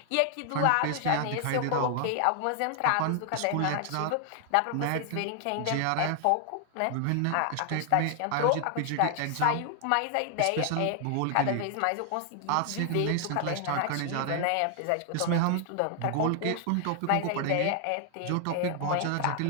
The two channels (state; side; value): different; both; correlation 0.00